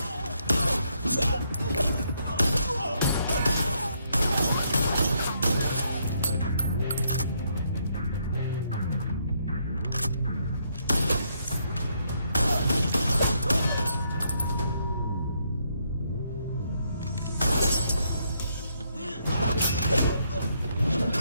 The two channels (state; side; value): inverted; both; correlation -0.74